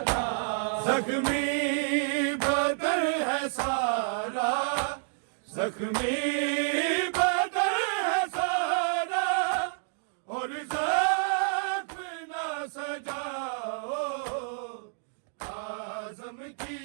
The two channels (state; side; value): silent; left; digital silence